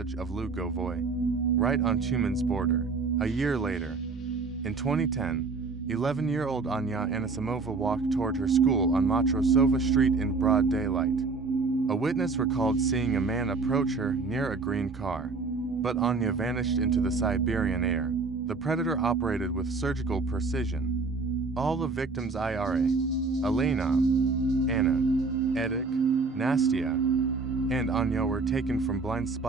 of Lugovoy, right on Tyumen's border. A year later, in 2010, 11-year-old Anya Anisimova walked toward her school on Matrosova Street in broad daylight. A witness recalled seeing a man approach her near a green car, but Anya vanished into the Siberian air. The predator operated with surgical precision. All the victims Ira, Elena, Anna, Edek, Nastya, and Anya were taken from blind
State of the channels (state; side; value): quieter; left; 4.1 dB